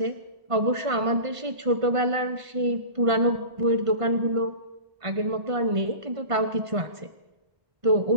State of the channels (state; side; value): late; left; 1.5 ms